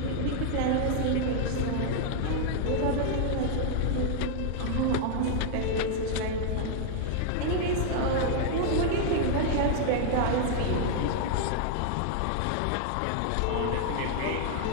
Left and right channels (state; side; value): different; both; correlation -0.01